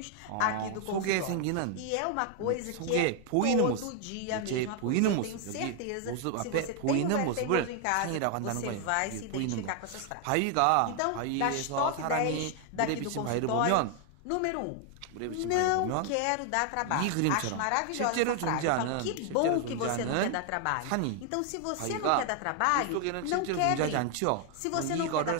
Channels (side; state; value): both; different; correlation 0.00